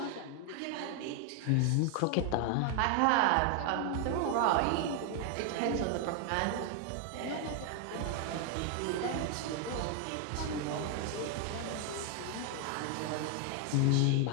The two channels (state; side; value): different; both; correlation 0.00